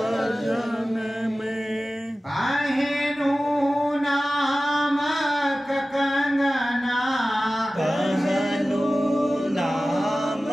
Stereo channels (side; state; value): both; normal; correlation 0.96